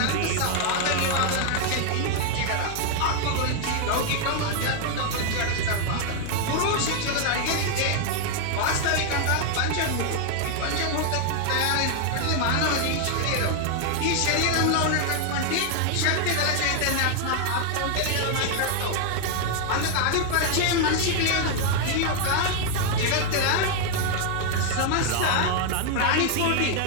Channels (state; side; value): different; both; correlation 0.00